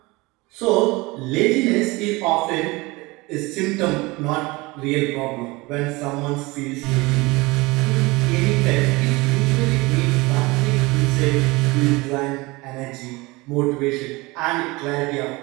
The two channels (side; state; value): left; quieter; 23.1 dB